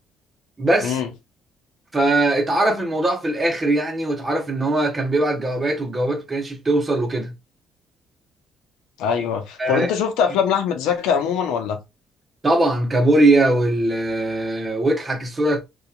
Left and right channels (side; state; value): both; normal; correlation 0.71